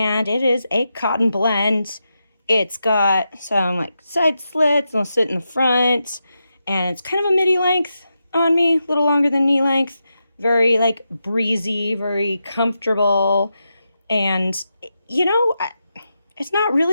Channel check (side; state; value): both; inverted; correlation -0.87